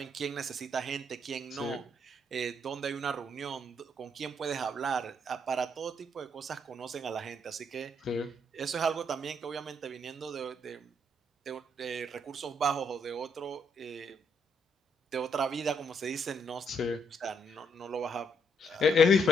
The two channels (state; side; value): normal; both; correlation 0.73